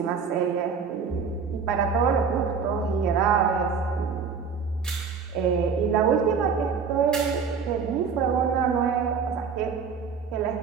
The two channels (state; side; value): quieter; left; 5.9 dB